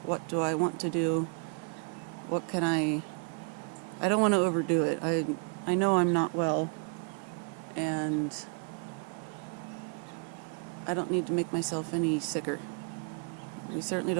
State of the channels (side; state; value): left; quieter; 35.3 dB